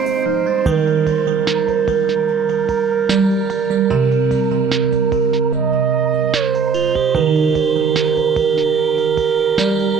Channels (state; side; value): quieter; left; 5.4 dB